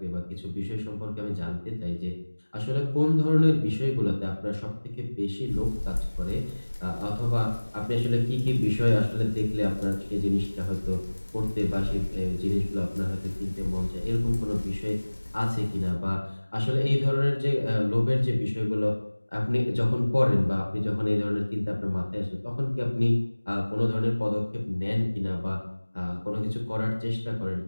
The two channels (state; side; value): inverted; both; correlation -1.00